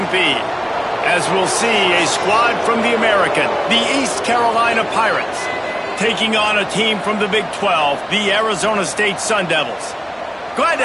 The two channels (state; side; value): identical; both; correlation 1.00